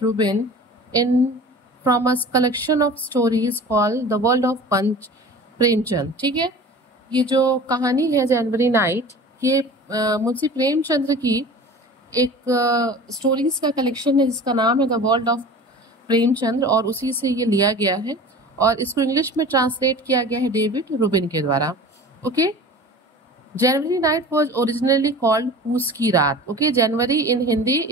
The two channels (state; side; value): normal; both; correlation 0.39